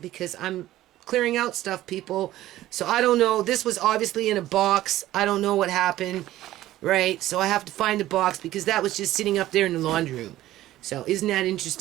I'm clearing out stuff, people. So, I don't know. This was obviously in a box. I don't know what happened, right? So, I have to find the box because that was just sitting up there in the laundry room. So, isn't that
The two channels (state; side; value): quieter; left; 14.8 dB